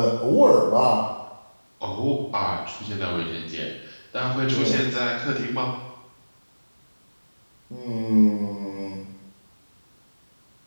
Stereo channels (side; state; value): both; inverted; correlation -1.00